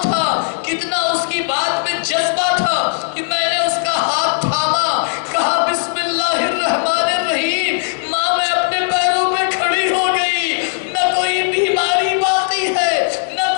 تھا، کتنا اس کی بات میں جذبہ تھا کہ میں نے اس کا ہاتھ تھاما، کہا بسم اللہ الرحمن الرحیم۔ ماں میں اپنے پیروں پہ کھڑی ہو گئی، نہ کوئی بیماری باقی ہے، نہ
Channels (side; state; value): right; silent; digital silence